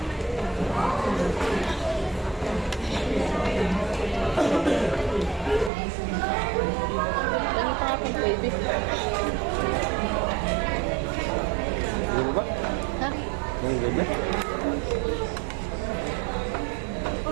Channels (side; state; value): left; drops out; at 5.7 s